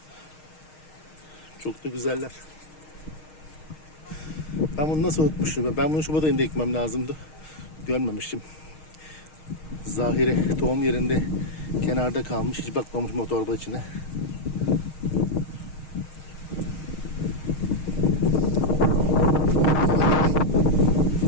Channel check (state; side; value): late; right; 6.4 ms